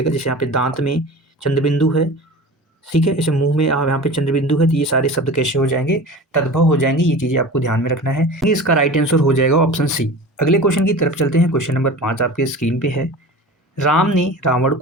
जैसे यहाँ पे दांत में चंद्रबिंदु है, ठीक है। इसे मुंह में यहाँ पे चंद्रबिंदु है, तो ये सारे शब्द कैसे हो जाएंगे, तद्भव हो जाएंगे। ये चीज़ें आपको ध्यान में रखना है। इसका राइट आंसर हो जाएगा ऑप्शन सी। अगले क्वेश्चन की तरफ चलते हैं। क्वेश्चन नंबर 5 आपके स्क्रीन पे है। राम ने रावण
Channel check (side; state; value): both; normal; correlation 0.35